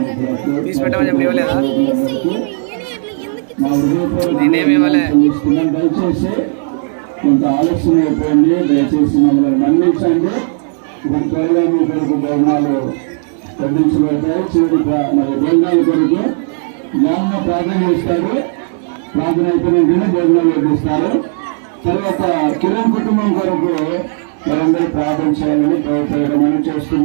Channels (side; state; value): left; silent; 62 dB below the other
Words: మా హృదయపూర్వక దయచేసి కొంత ఆలస్యం అయిపోయింది. దయచేసి మమ్మల్ని మన్నించండి. ఇప్పుడు త్వరగా మీ కొరకు భవనాలు తగ్గించబడతాయి. చివరి మరి భోజనాల కొరకు జ్ఞానం ప్రార్థన చేస్తారు. ప్రార్థన అయిపోయిన భోజనాలు వడ్డిస్తారు. తర్వాత కిరణ్ కుటుంబం కొరకు మనందరూ ప్రార్థన చేయాలని ప్రభుత్వం మనం